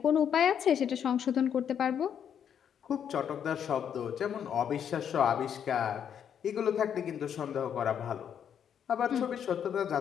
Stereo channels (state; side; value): quieter; right; 8.5 dB